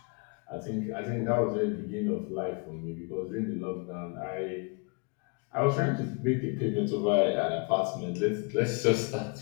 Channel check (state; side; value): quieter; right; 34.2 dB